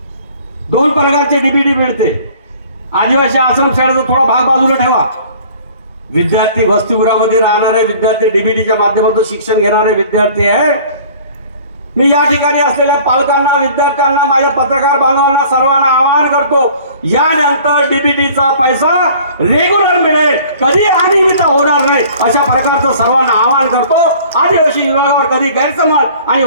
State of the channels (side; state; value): both; inverted; correlation -0.50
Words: दोन प्रकारचे डीबीटी मिळते. आदिवासी आश्रमशाळेचा थोडा भाग बाजूला ठेवा. विद्यार्थी वसतिगृहामध्ये राहणारे विद्यार्थी, डीबीटीच्या माध्यमातून शिक्षण घेणारे विद्यार्थी आहे. मी या ठिकाणी असलेल्या पालकांना, विद्यार्थ्यांना, माझ्या पत्रकार बांधवांना सर्वांना आवाहन करतो, यानंतर डीबीटीचा पैसा रेग्युलर मिळेल, कधी अनियमित होणार नाही, अशा प्रकारचं सर्वांना आवाहन करतो. आदिवासी विभागावर कधी गैरसमज आणि